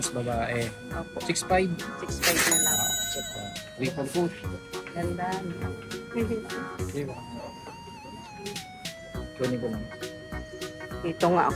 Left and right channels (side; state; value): both; identical; correlation 1.00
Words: babae. Opo. 6'5". 6'5 na lang. Triple foot. Ganda. Diba? Kunin ko lang. Dito nga